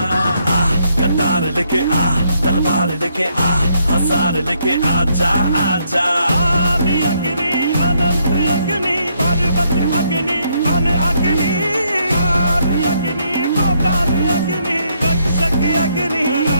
कटार लेके आ, तलवार लेके आ, हजार लेके आजा आजा। आदि अग्नि अनंत अग्नि पर्वत अग्नि वन अग्नि। आदि अग्नि पाताल अग्नि रक्षक अग्नि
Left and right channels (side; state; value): both; inverted; correlation -0.73